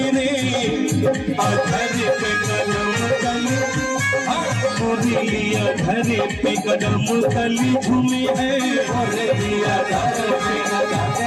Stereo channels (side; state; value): both; identical; correlation 1.00